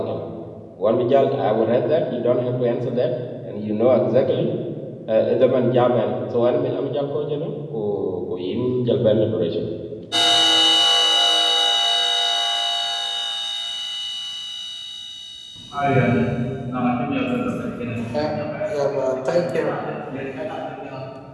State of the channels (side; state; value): both; identical; correlation 1.00